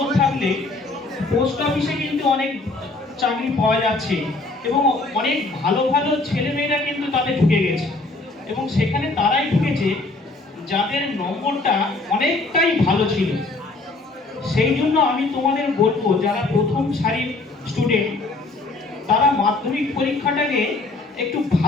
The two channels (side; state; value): right; quieter; 3.3 dB